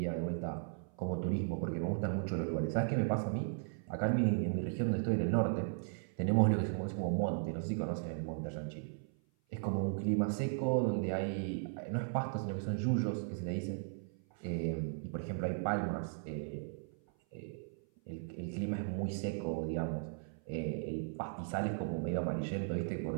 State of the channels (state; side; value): silent; left; 53 dB below the other